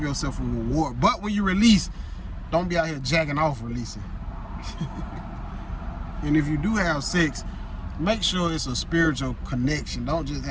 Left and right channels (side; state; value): both; identical; correlation 1.00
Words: yourself a reward. But when you release, don't be out here jacking off releasing. And if you do have sex, make sure it's a spiritual connection. Don't just